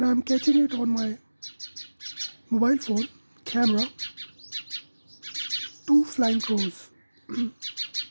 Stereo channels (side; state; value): both; inverted; correlation -1.00